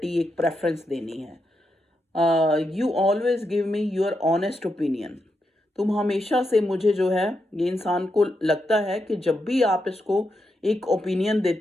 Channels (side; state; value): both; normal; correlation 0.84